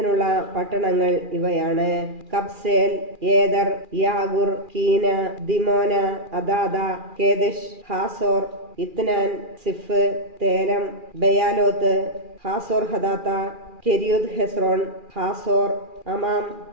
പട്ടണങ്ങൾ ഇവയാണ്: കബ്സേൽ, ഏദർ, യാഗുർ, കീന, ദിമോന, അദാദ, കേദഷ്, ഹാസോർ, ഇത്നാൻ, സിഫ്, തേരം, ബയാലോത്ത്, ഹാസോർ ഹദാത്ത, കെരിയുദ് ഹെസ്രോൺ, ഹാസോർ, അമാം,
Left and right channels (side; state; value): left; late; 2.4 ms